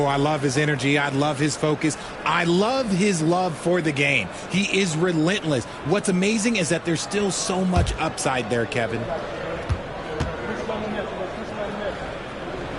I love his energy. I love his focus. I love his love for the game. He is relentless. What's amazing is that there's still so much upside there, Kevin.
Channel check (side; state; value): both; identical; correlation 1.00